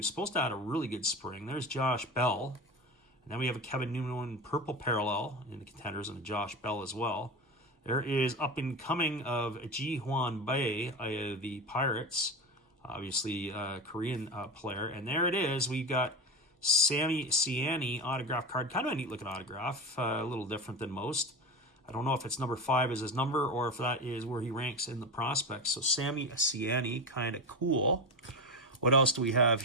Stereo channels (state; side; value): normal; both; correlation 0.22